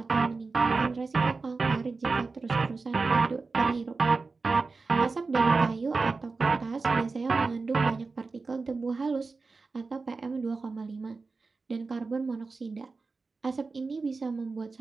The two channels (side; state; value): left; quieter; 4.1 dB